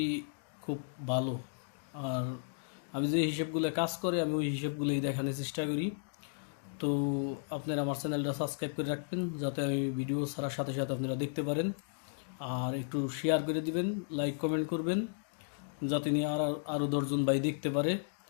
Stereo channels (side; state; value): right; silent; digital silence